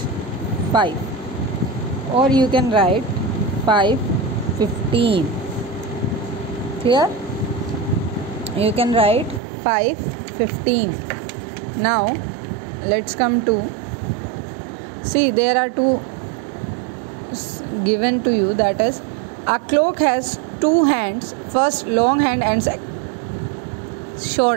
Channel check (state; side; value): drops out; left; at 9.4 s